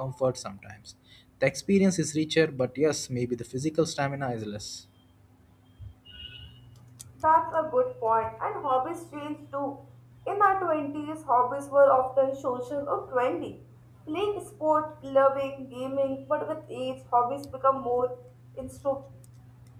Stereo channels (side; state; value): both; identical; correlation 1.00